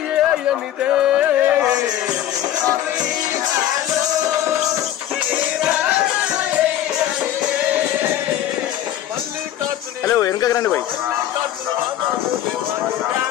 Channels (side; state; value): right; quieter; 11.9 dB